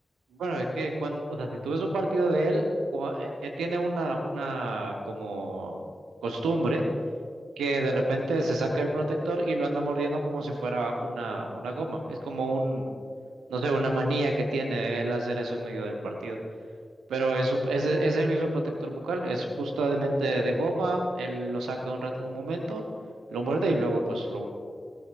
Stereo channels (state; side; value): normal; both; correlation 0.85